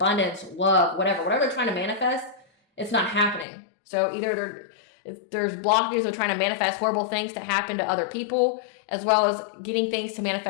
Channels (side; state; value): right; drops out; at 3.5 s